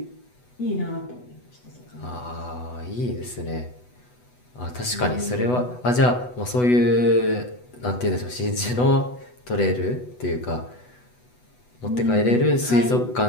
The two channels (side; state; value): right; late; 8.1 ms